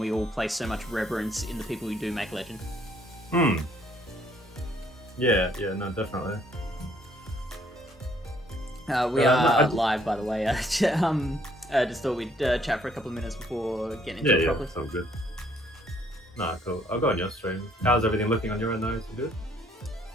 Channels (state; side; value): normal; both; correlation 0.65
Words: all place so much reverence in the people who do make legend. Yeah, no, definitely. We are live, by the way. Just thought we'd chat for a couple of minutes before getting into it properly. Yeah, sounds good. Nah, cool. I'll go on your stream. How's everything looking on your end, though? Is it good?